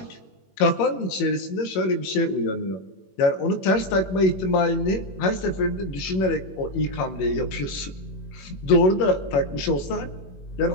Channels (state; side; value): late; right; 21 ms